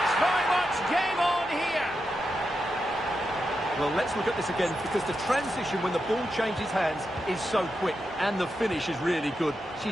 very much game on here. Well, let's look at this again, because the transition when the ball changes hands is so quick, and the finish is really good. She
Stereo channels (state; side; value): normal; both; correlation 0.87